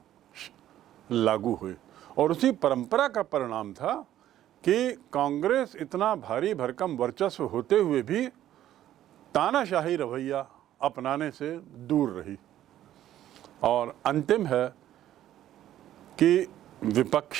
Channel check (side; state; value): left; quieter; 12.4 dB